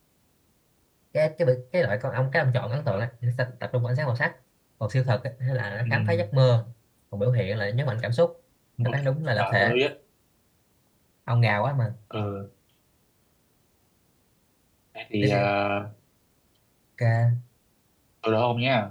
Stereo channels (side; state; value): both; identical; correlation 1.00